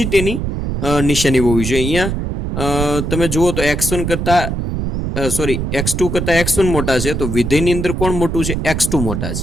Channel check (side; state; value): right; noise; rumble, 3 dB below the sound